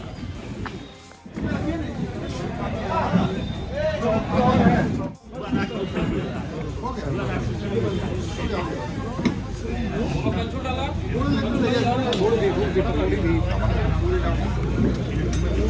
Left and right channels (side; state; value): both; identical; correlation 1.00